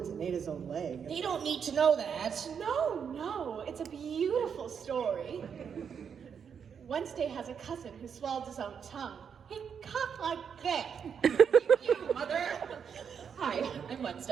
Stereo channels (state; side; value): quieter; left; 7.1 dB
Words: and ate his own leg. They don't need to know that. No, it's a beautiful story. Wednesday has a cousin who swallowed his own tongue. He coughed like that. You, mother. Hi, I'm